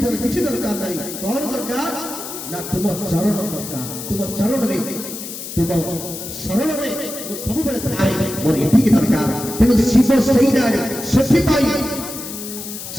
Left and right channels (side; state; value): left; noise; hiss, 9 dB below the sound